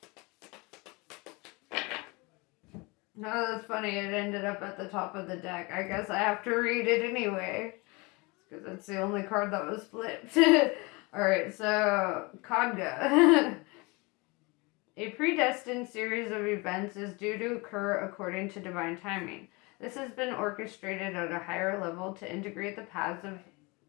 No, that's funny. It ended up at the top of the deck. I guess I have to read it anyway. because it's the only card that was flipped. Alright, so Khadga. A predestined series of events is due to occur according to divine timing. This has been orchestrated at a higher level to integrate the paths of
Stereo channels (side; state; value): right; quieter; 26.7 dB